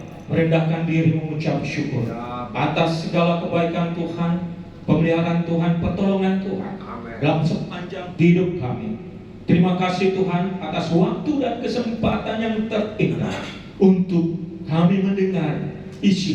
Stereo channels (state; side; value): identical; both; correlation 1.00